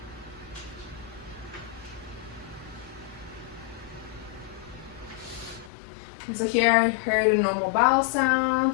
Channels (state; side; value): drops out; right; at 5.7 s